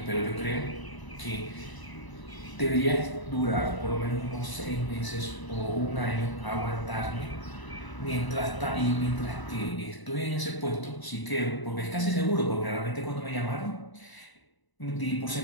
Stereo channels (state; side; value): late; right; 1.0 ms